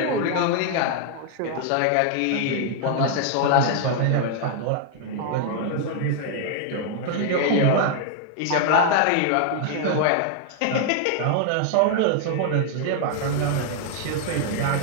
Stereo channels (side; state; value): both; different; correlation -0.01